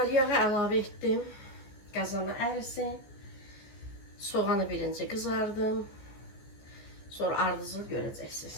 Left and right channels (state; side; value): late; right; 14 ms